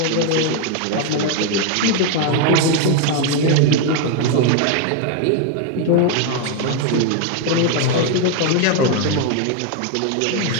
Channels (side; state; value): both; different; correlation 0.01